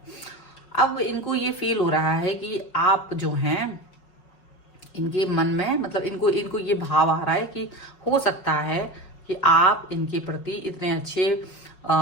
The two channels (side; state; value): right; late; 5.4 ms